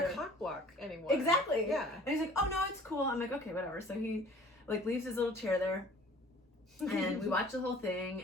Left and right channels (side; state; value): both; normal; correlation 0.50